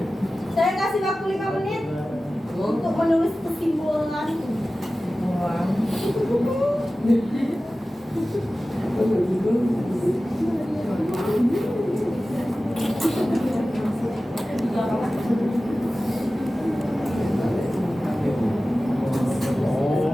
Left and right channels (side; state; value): both; normal; correlation 0.96